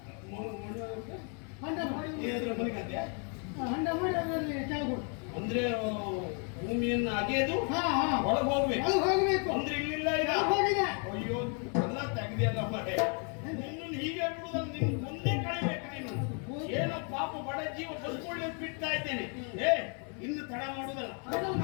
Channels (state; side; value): quieter; right; 39.7 dB